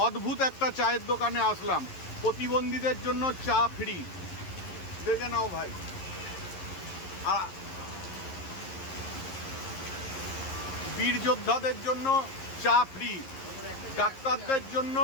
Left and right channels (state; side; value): late; right; 11 ms